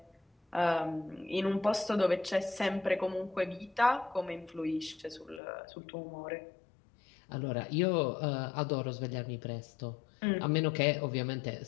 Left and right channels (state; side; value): drops out; right; at 5.4 s